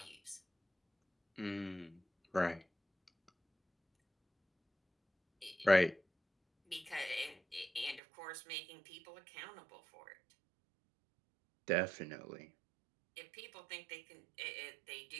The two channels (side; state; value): left; drops out; at 8.0 s